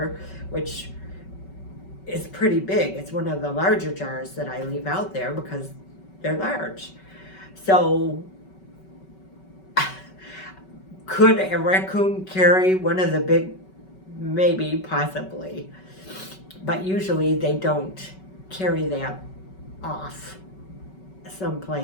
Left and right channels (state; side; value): late; right; 5.3 ms